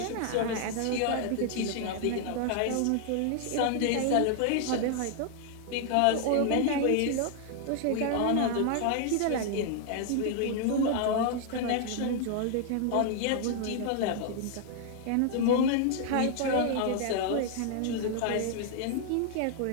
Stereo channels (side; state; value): both; different; correlation 0.00